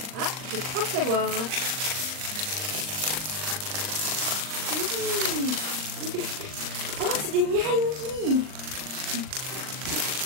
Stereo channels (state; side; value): late; left; 39 ms